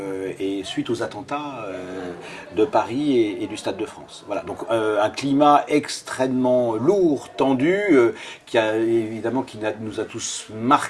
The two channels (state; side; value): identical; both; correlation 1.00